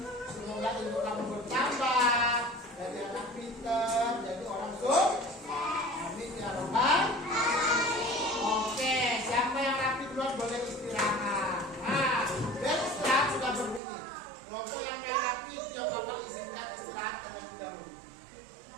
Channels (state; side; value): drops out; left; at 13.8 s